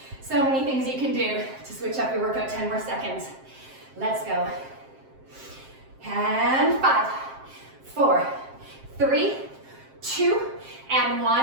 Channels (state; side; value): late; left; 7.6 ms